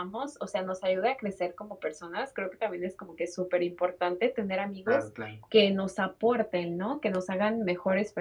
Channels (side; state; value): both; identical; correlation 1.00